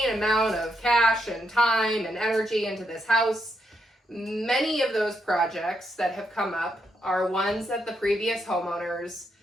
amount of cash and time and energy into this house. Many of those projects that have come up are ones that the previous homeowners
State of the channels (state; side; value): normal; both; correlation 0.80